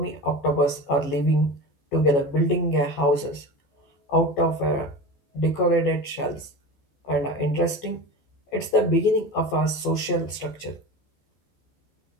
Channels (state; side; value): late; right; 14 ms